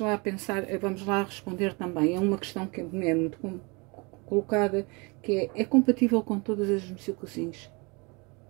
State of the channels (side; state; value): left; quieter; 28.8 dB